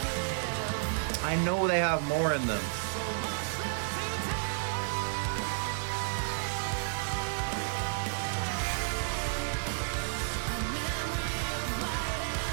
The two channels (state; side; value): silent; left; 57 dB below the other